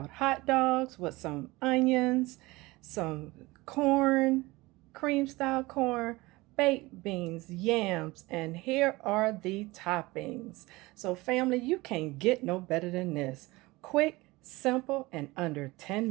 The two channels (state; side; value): quieter; left; 21.3 dB